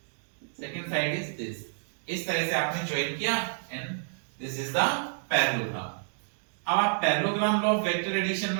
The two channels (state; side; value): silent; left; digital silence